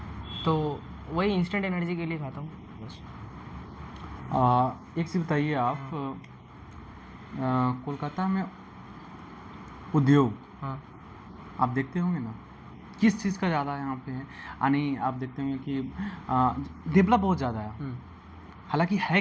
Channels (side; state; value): both; identical; correlation 1.00